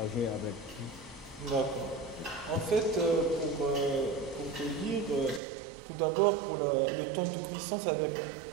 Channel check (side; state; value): left; drops out; at 5.4 s